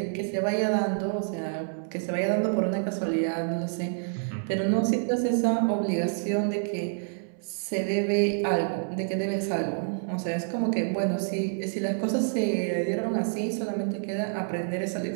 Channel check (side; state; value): left; silent; 59 dB below the other